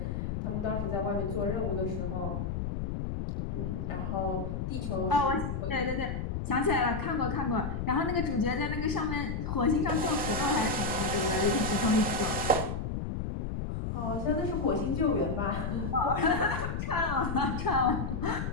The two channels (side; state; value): left; noise; rumble, 3 dB below the sound